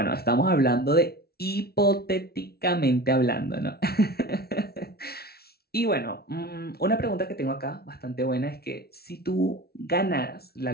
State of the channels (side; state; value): right; late; 0.45 ms